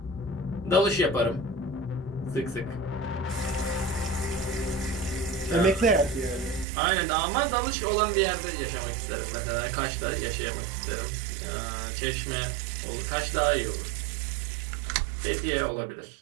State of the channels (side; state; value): left; drops out; at 6.7 s